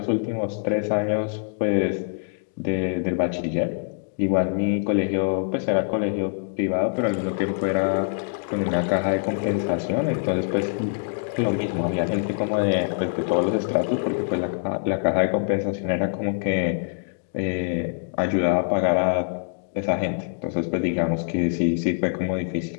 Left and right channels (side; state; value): right; silent; digital silence